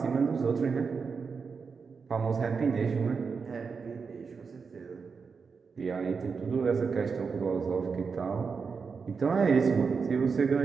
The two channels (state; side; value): quieter; left; 5.3 dB